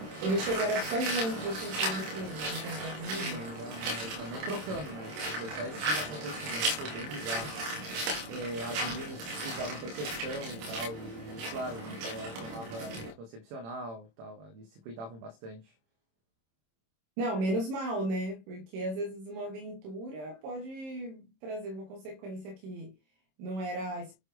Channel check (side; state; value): left; late; 26 ms